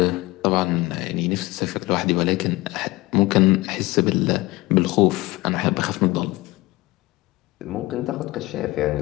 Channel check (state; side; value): quieter; right; 20.6 dB